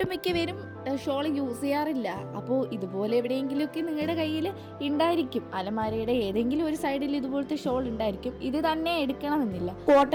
പേരും ഷോൾ യൂസ് ചെയ്യാറില്ല. അപ്പോൾ ഇതുപോലെ എവിടെയെങ്കിലുമൊക്കെ നിങ്ങളുടെ കയ്യിൽ ഉണ്ടായിരിക്കും. അലമാരയുടെ ഏതെങ്കിലും ഒരു സൈഡിൽ ഇതുപോലത്തെ ഷോൾ ഉണ്ടായിരിക്കും. ഇത് തന്നെ എടുക്കണമെന്നില്ല.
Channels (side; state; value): both; identical; correlation 1.00